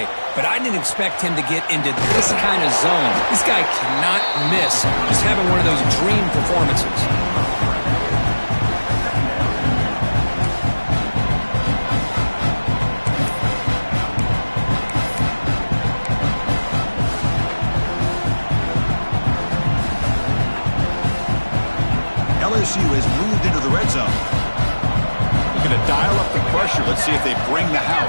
But I didn't expect him to get into this kind of zone. This guy cannot miss just having one of those dream performances. LSU has moved into the red zone. Looking to dial up the pressure. Let's see if they bring the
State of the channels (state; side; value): inverted; both; correlation -1.00